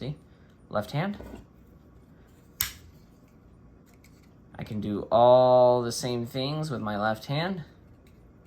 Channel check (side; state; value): both; identical; correlation 1.00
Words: Left hand. I can do all the same things with my left hand,